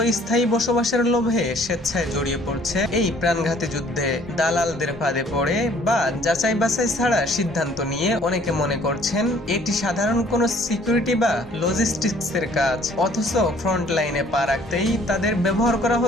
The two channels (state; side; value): normal; both; correlation 0.58